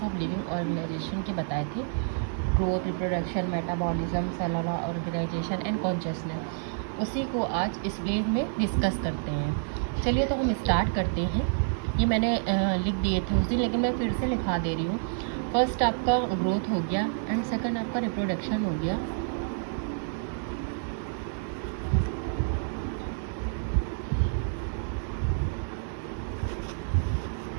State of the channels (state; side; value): silent; left; 59 dB below the other